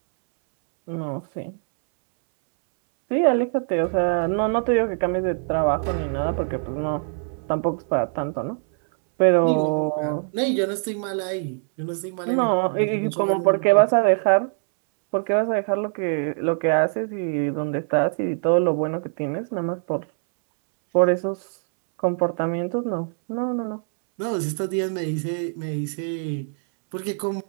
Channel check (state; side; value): silent; left; 63 dB below the other